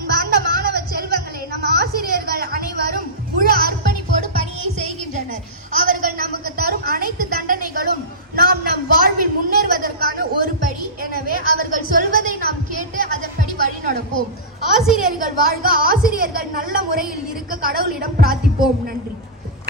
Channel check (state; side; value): normal; both; correlation -0.17